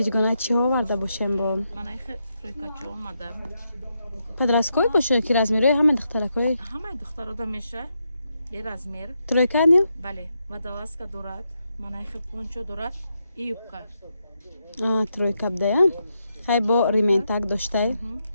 чӣ оварда бошем бо? Манай тройкачо омада. Подросткой бошем ки размери ҳама духтаракой? Ҳамаи духтарода меша. Бе размер. Тройка не? Бале. Водолазка дорад. Манай пончо дорад. И юбка. Тройка бдая. Хай бо рементак доштай.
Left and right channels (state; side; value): inverted; both; correlation -0.83